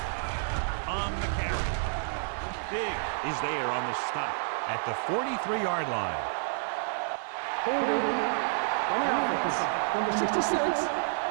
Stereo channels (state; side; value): silent; left; 58 dB below the other